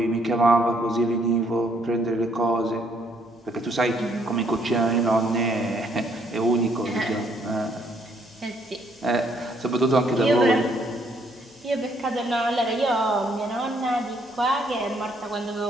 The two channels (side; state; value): both; normal; correlation 0.68